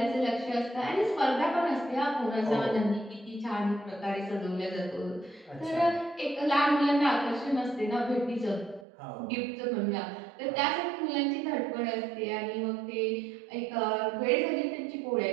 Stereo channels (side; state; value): left; drops out; at 8.8 s